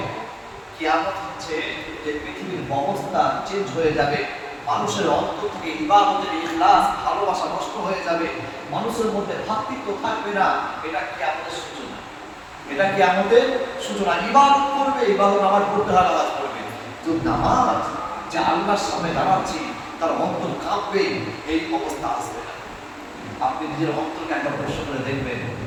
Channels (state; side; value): identical; both; correlation 1.00